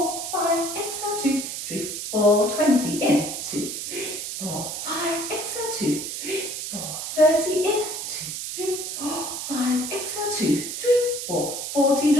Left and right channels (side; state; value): right; noise; hiss, 5 dB below the sound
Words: 5, exhale, 2, 3, 4, 20, in, 2, 3, 4, 5, exhale, 2, 3, 4, 30, in, 2, 3, 4, 5, exhale, 2, 3, 4, 40,